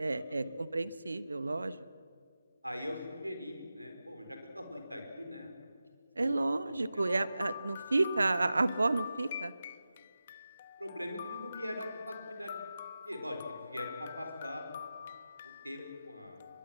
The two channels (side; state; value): both; inverted; correlation -0.92